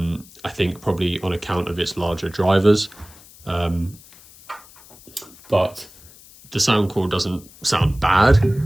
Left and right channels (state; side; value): noise; left; hiss, 23 dB below the sound